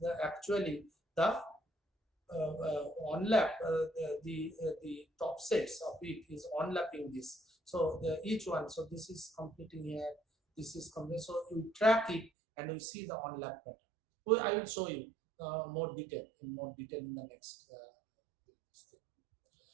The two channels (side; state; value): left; drops out; at 12.3 s